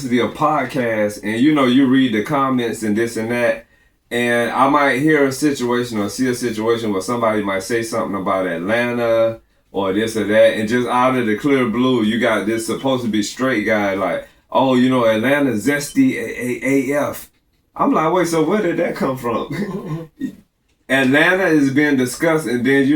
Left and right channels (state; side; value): identical; both; correlation 1.00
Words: of podcasts, and you know, you read the comments and this and that, and I might hear a situation or see a situation where somebody might say something about Atlanta or this or that, and just out of the clear blue, you got this supposed to be straight guy like, oh, you know, Atlanta zesty AF. I'm like, wait, so where did that come from? Atlanta is being discussed, and then,